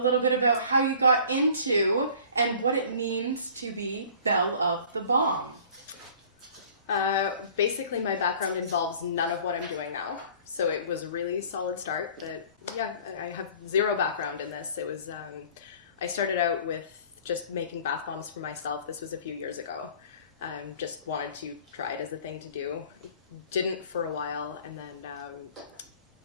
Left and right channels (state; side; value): inverted; both; correlation -0.49